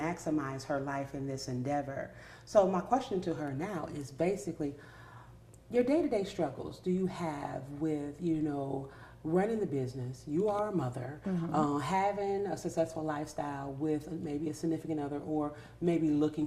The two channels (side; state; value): both; identical; correlation 1.00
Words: her life in this endeavor. So my question to her now is basically, your day-to-day struggles do you have with, running the business? You are a mother, having a successful lifestyle with maybe a significant other, or maybe looking